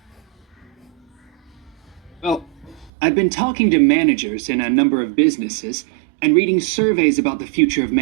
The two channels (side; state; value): left; drops out; at 2.9 s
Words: Well, I've been talking to managers in a number of businesses and reading surveys about the future of